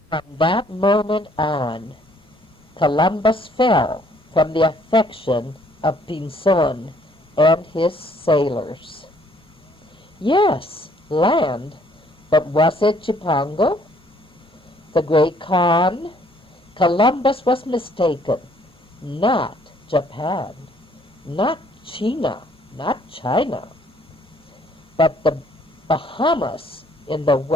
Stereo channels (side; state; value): both; normal; correlation 0.62